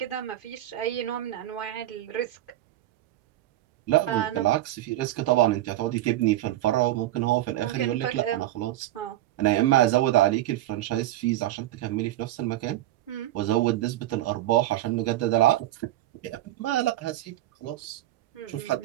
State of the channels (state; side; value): quieter; left; 14.7 dB